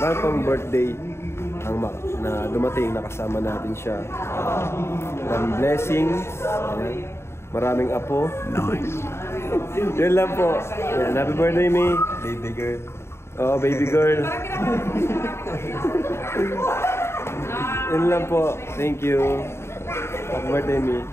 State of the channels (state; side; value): late; right; 0.12 ms